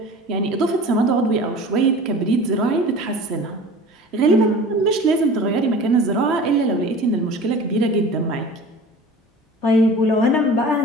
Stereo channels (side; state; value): both; normal; correlation 0.40